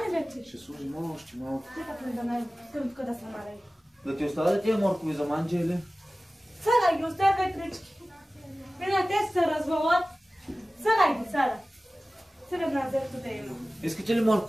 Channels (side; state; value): both; normal; correlation 0.97